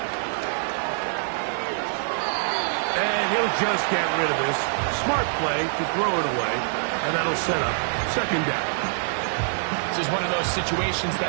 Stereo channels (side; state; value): left; silent; 62 dB below the other